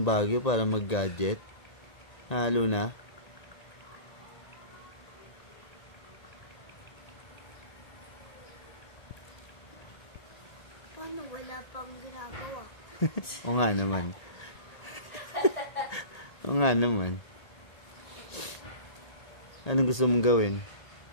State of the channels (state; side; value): late; right; 1.8 ms